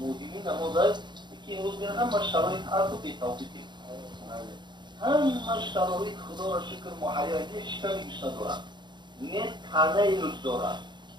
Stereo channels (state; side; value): late; left; 0.22 ms